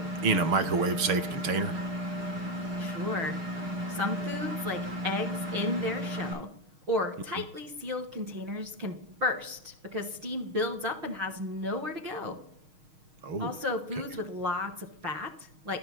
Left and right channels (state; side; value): late; left; 6.4 ms